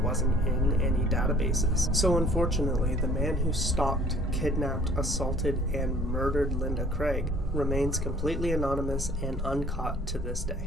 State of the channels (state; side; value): normal; both; correlation 0.54